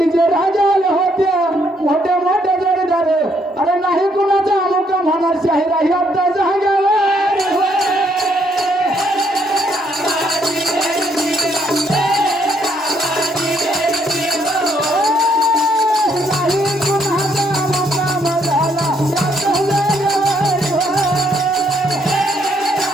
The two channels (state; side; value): normal; both; correlation 0.71